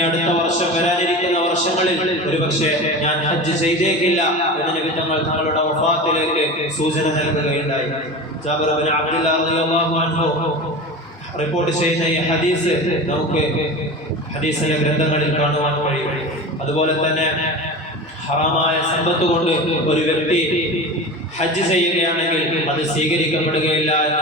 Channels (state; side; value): normal; both; correlation 0.30